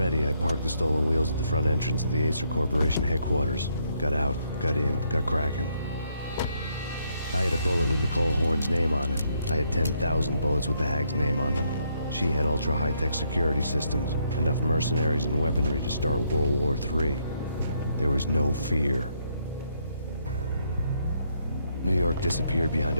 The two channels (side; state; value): both; inverted; correlation -0.73